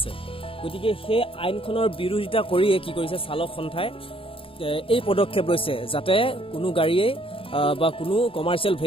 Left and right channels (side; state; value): right; late; 0.26 ms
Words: গতিকে সেই আইনখনৰ বিৰোধিতা কৰিয়ে কি কৰিছে চালক সন্থাই এই পদক্ষেপ লৈছে যাতে কোনো গাড়ীয়ে বা কোনো কমাৰ্চিয়েল